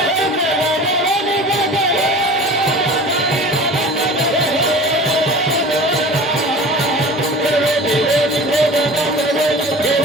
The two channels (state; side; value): normal; both; correlation 0.39